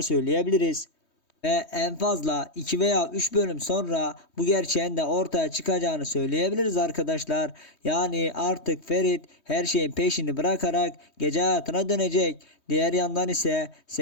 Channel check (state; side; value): late; right; 3.2 ms